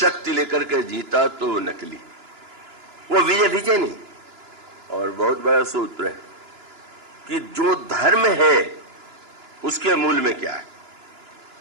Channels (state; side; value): late; left; 2.9 ms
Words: लेकर के जीता तो नकली, वो विजय नहीं। और बहुत बड़ा सूत्र है कि जो धर्म है उसके मूल में क्या है।